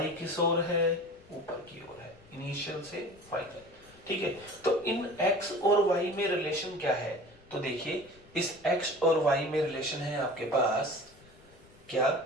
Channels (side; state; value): left; noise; rumble, 25 dB below the sound